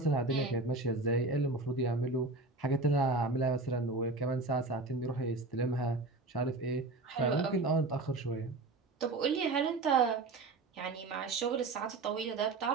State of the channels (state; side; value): quieter; left; 3.4 dB